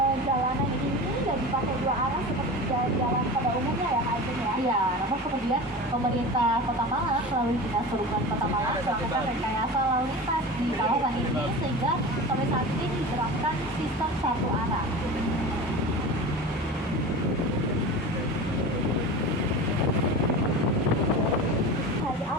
jalanan ini nggak dipakai dua arah seperti jalan pada umumnya ya, Kak Ajeng ya? Iya, namun kemudian pemerintah Kota Malang melalui Dinas Perhubungan Kota Malang melakukan rekayasa lalu lintas di kawasan ini sehingga sampai saat ini diterapkan sistem satu arah. Hari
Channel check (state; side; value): normal; both; correlation 0.31